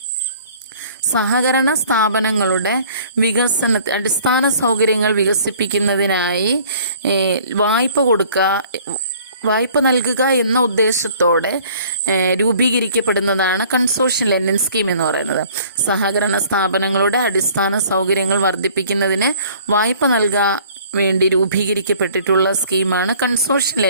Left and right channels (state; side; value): inverted; both; correlation -0.53